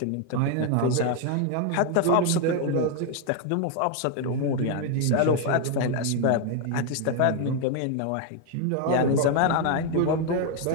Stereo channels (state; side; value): different; both; correlation 0.01